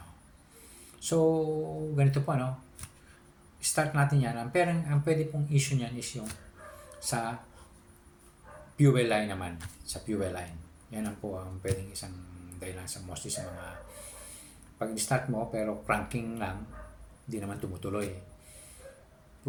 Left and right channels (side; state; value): both; identical; correlation 1.00